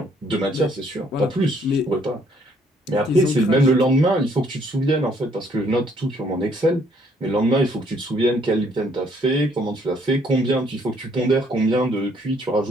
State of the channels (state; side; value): normal; both; correlation 0.65